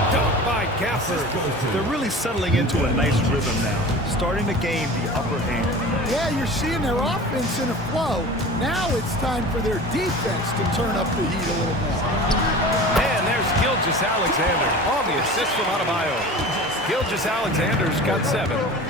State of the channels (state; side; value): normal; both; correlation 0.37